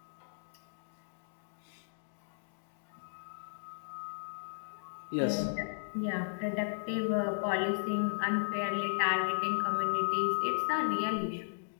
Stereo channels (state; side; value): silent; right; digital silence